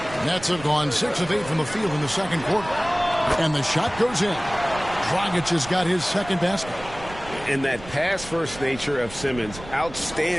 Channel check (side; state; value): right; noise; rumble, 15 dB below the sound